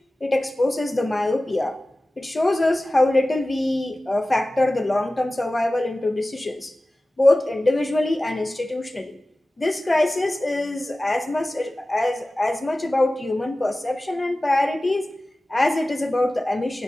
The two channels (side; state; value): both; normal; correlation 0.96